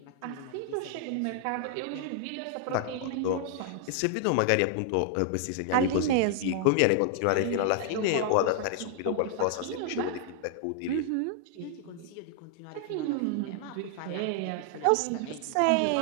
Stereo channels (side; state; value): both; different; correlation 0.00